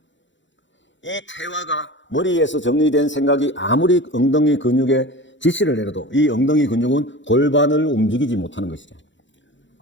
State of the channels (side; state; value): right; late; 0.54 ms